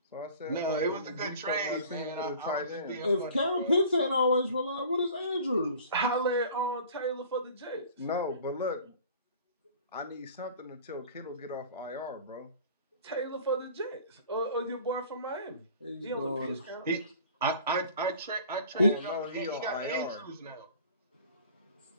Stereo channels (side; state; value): both; inverted; correlation -0.45